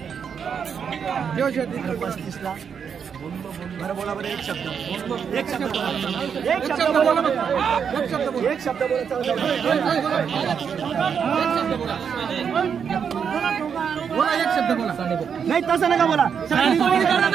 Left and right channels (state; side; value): quieter; left; 7.1 dB